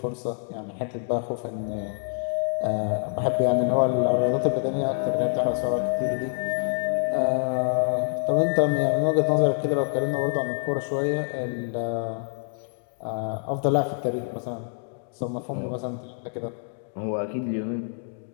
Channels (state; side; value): silent; right; digital silence